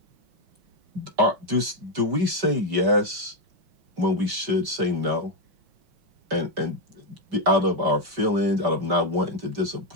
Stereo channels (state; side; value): late; left; 5.1 ms